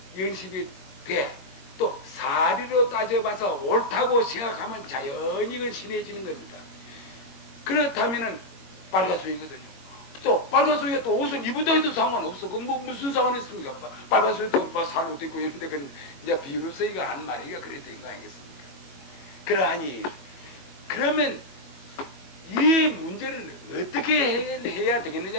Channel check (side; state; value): right; late; 22 ms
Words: 연습이 돼. 또 사리로 따져봐서 옳다고 생각하면 자연히 이건 신해지는 겁니다. 그렇다면은 빨가수이거든요. 또 빨가수이가 또 옷을 입어도 해도 상관없어. 그 뭐 무슨 상관이 있습니까? 빨가수이도 뭐 살옷 입고 이런데 그건 이제 비유로서 이거 한 말이가 그래 된 거 아니겠습니까? 그러하니 그러면 이 문제를 어떻게 해야